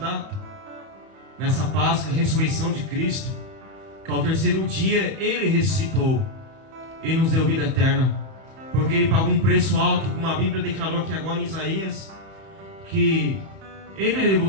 nessa Páscoa, a ressurreição de Cristo, que ao terceiro dia Ele ressuscitou e nos deu vida eterna, porque Ele pagou um preço alto, como a Bíblia declarou aqui agora em Isaías, que Ele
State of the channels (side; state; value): left; late; 31 ms